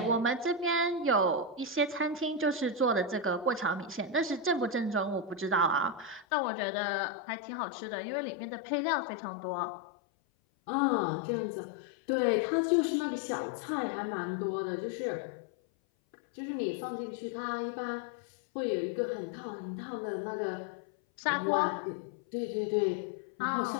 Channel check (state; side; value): drops out; right; at 6.2 s